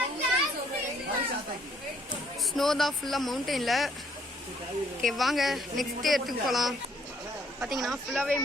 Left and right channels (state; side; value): normal; both; correlation 0.66